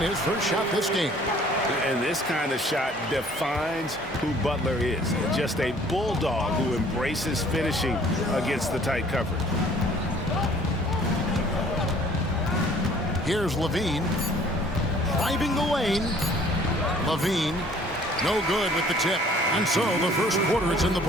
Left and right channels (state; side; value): normal; both; correlation 0.55